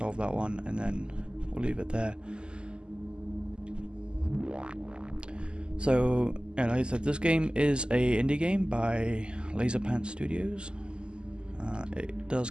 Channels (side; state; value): left; late; 0.049 ms